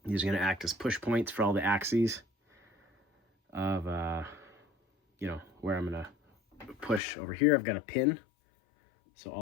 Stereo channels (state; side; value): drops out; right; at 7.0 s